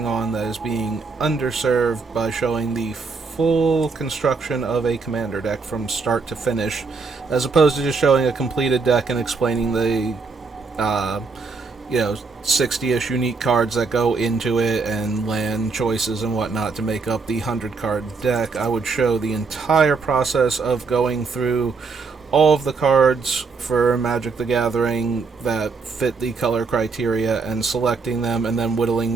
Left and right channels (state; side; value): quieter; left; 4.5 dB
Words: on, that is being underserved, by showing the full construction of a commander deck from start to finish, as opposed to just showing a completed deck and explaining the 60-ish unique cards that go into it and land choices and whatnot to make up the 100-card deck. I would show the entire process of going through all of the cards for Magic the Gathering that fit the color criteria and selecting them, and then